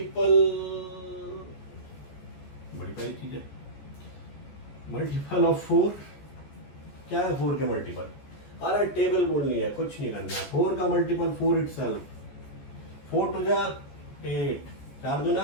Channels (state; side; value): late; right; 14 ms